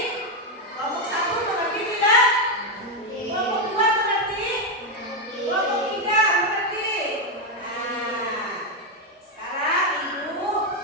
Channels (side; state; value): both; normal; correlation 0.06